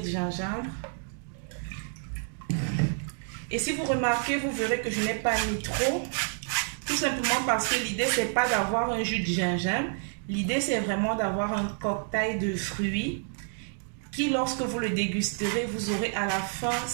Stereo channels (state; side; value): silent; left; 59 dB below the other